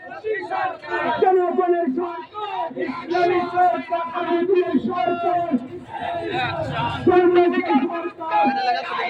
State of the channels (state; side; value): identical; both; correlation 1.00